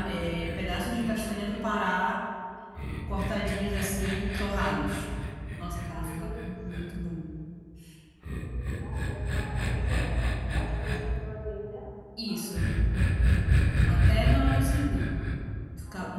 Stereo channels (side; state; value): both; identical; correlation 1.00